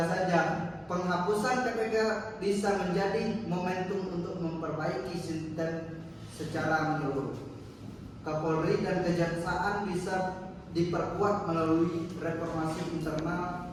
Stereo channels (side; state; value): both; identical; correlation 1.00